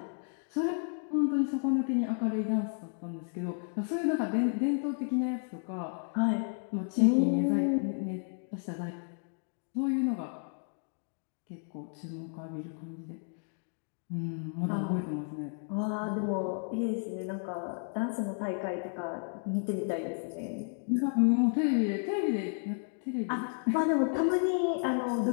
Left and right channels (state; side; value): silent; right; 56 dB below the other